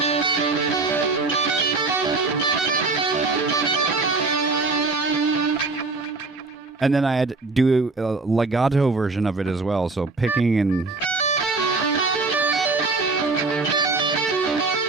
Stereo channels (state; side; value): quieter; left; 3.8 dB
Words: And then I had to do a legato version of it as well, so picking and...